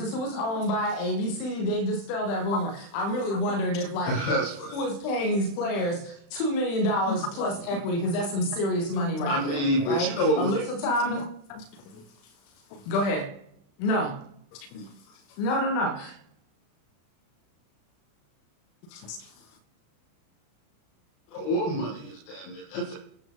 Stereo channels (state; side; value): late; right; 35 ms